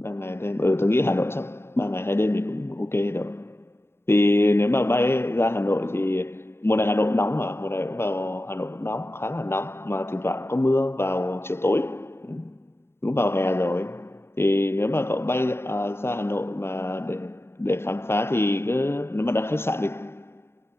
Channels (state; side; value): late; right; 0.12 ms